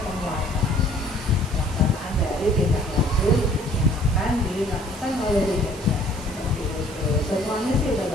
penguatan pelaksanaan dari tindak lanjut yang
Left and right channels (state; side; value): noise; right; hiss, 18 dB below the sound